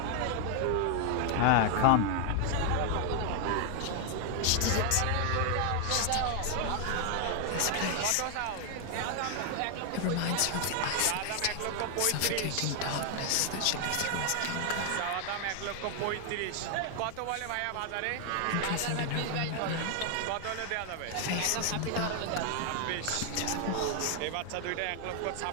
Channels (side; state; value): both; different; correlation 0.00